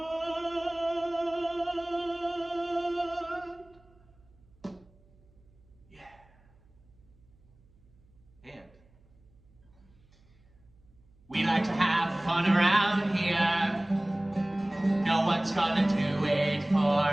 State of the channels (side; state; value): right; noise; hum, 30 dB below the sound